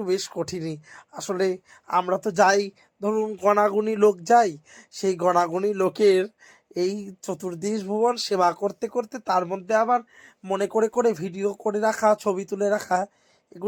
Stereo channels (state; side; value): identical; both; correlation 1.00